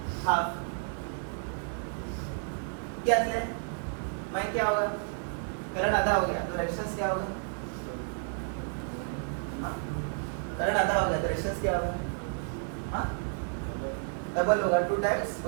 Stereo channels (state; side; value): silent; left; 57 dB below the other